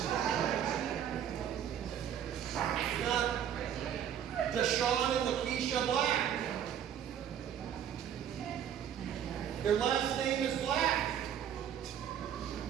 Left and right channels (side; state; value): left; quieter; 9.3 dB